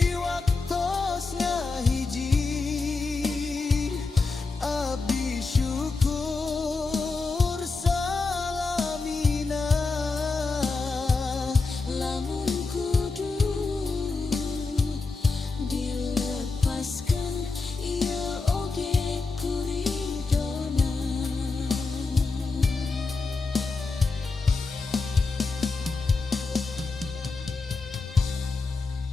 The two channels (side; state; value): right; quieter; 4.0 dB